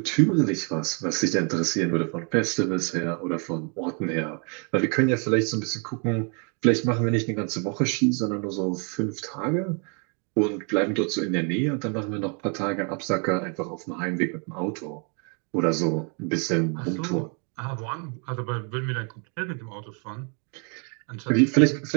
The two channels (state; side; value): quieter; left; 37.7 dB